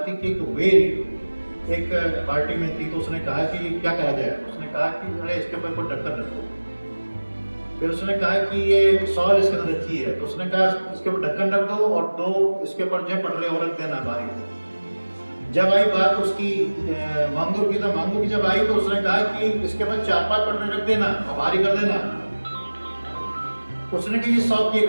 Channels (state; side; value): inverted; both; correlation -1.00